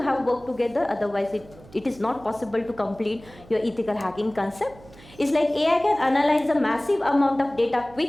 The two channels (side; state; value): right; noise; hum, 22 dB below the sound